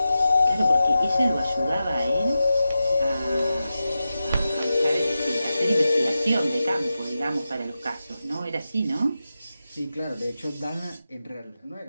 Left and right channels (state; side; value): inverted; both; correlation -0.92